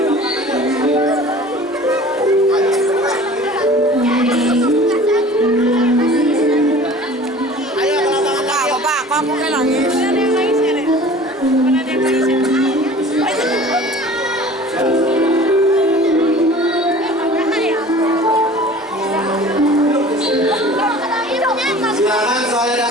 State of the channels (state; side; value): normal; both; correlation 0.44